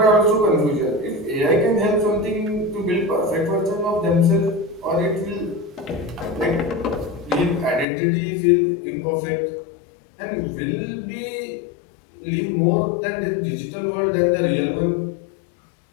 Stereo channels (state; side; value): drops out; right; at 7.9 s